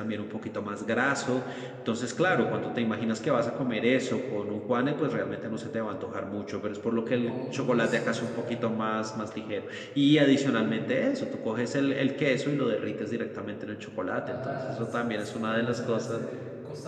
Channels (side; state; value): both; identical; correlation 1.00